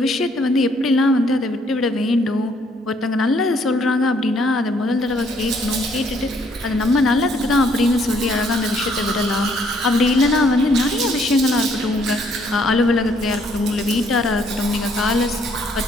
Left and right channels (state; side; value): normal; both; correlation 0.67